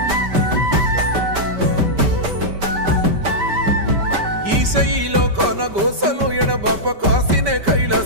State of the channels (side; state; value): left; late; 5.2 ms